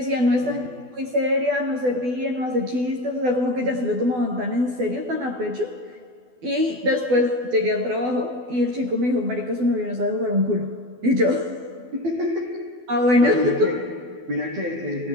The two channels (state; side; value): late; left; 12 ms